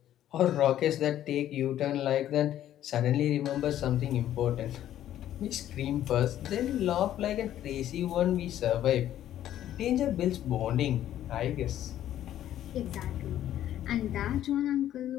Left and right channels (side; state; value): right; quieter; 11.9 dB